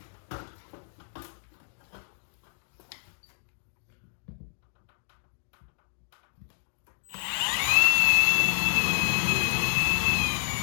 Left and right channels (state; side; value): silent; right; digital silence